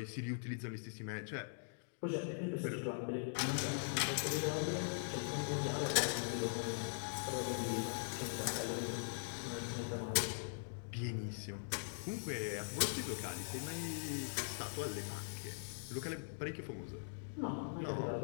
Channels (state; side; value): silent; right; digital silence